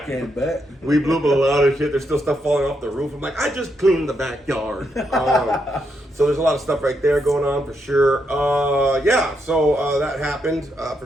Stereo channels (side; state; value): both; normal; correlation 0.80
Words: Bet. We blew up a lot of shit. There's still stuff falling off the roof. I'm like, I just cleaned the backyard. So there's a lot of stuff right there going on for sure. Yeah, so that happened for